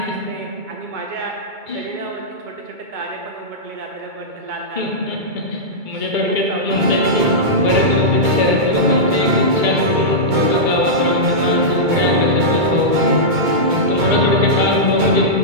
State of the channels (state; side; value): late; left; 2.2 ms